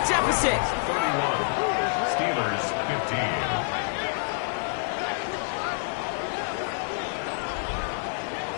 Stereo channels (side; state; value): right; silent; 58 dB below the other